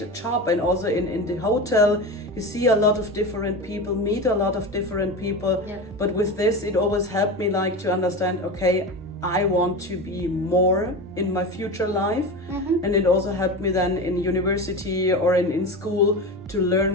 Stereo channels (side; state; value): both; normal; correlation 0.25